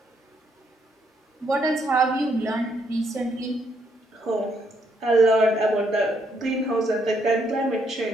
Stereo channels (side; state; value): both; normal; correlation 0.73